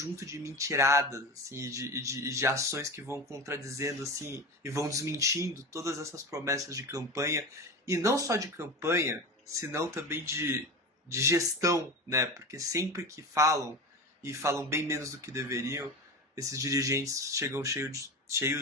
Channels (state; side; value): normal; both; correlation 0.27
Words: de mentiradas, assim, de ações que vão contradizendo, assim, e vão desmentindo todas essas promessas de campanha, e não só de campanha, senão também de gestão, né? Porque sempre que falam, e falam bem menos do que deveriam, esses dirigentes chegam